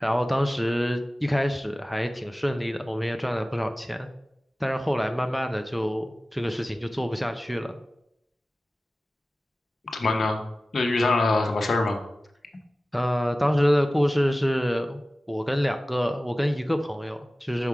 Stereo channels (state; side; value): normal; both; correlation 0.96